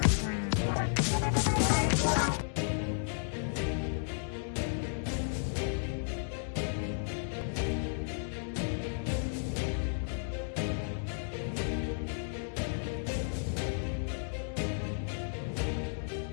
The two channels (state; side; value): silent; right; digital silence